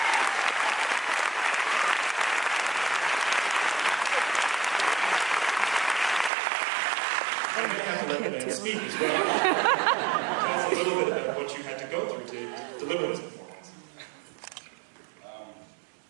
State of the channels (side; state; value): left; drops out; at 6.3 s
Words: Speak as well. Tell us a little bit about what you had to go through to deliver this performance.